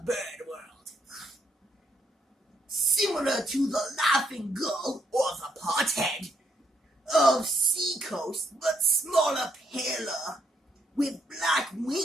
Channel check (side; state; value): both; normal; correlation 0.75